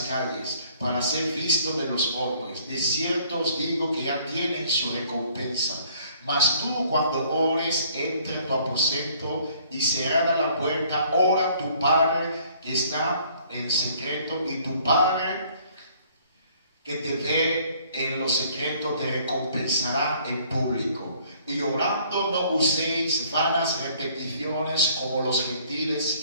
calles, para ser visto de los hombres. De cierto os digo que ya tienen su recompensa. Mas tú, cuando ores, entra en tu aposento y cerrada la puerta, ora a tu Padre que está en secreto, y tu Padre que te ve en lo secreto te recompensará en público. Y orando no uséis vanas repeticiones como los gentiles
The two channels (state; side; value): inverted; both; correlation -0.59